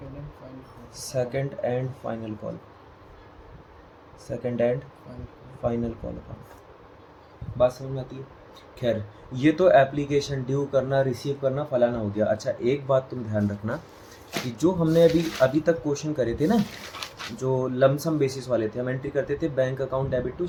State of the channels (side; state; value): both; identical; correlation 1.00